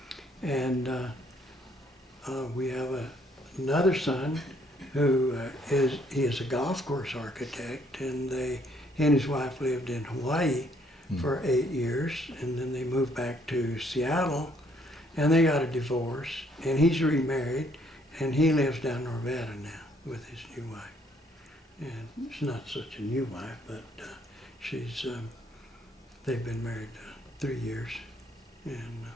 And we have another son who is a golf course architect, and he and his wife lived in Hawaii for 8 years, and then they moved back to Seattle, and they got a divorce, and he's remarried, and he lives down in Nevada now with his new wife. And it's not such a new wife, but they've been married 3 years, and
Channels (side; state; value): both; normal; correlation 0.67